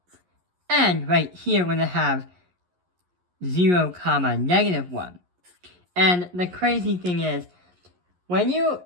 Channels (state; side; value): late; left; 11 ms